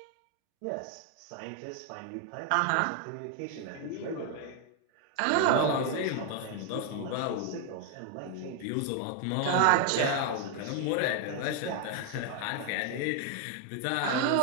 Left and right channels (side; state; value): both; different; correlation 0.00